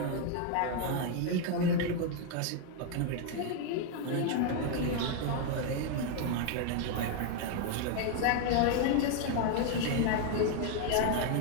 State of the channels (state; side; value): different; both; correlation 0.01